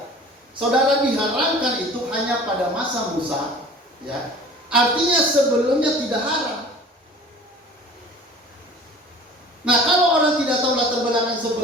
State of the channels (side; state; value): both; normal; correlation 0.44